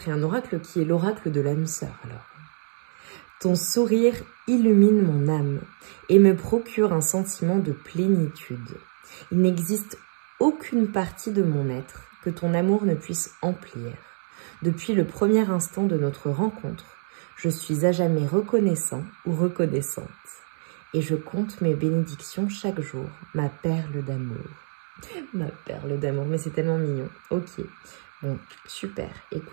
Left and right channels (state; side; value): silent; left; 61 dB below the other